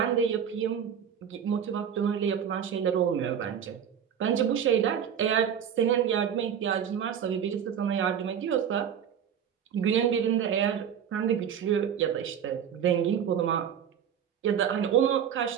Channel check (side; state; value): left; quieter; 8.5 dB